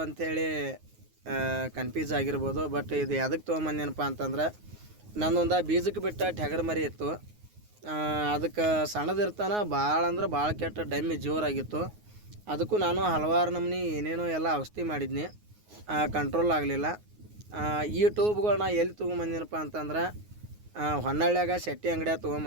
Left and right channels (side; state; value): left; late; 9.5 ms